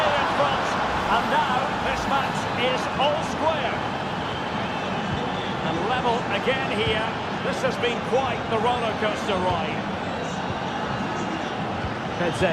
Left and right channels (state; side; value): identical; both; correlation 1.00